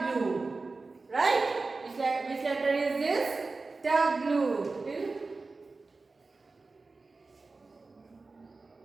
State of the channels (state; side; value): quieter; left; 3.7 dB